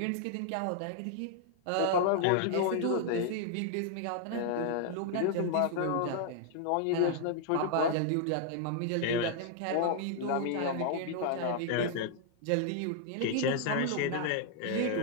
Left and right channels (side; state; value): both; different; correlation -0.01